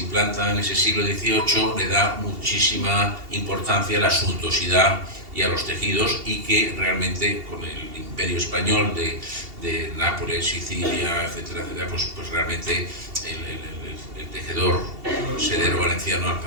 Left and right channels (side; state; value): left; late; 2.8 ms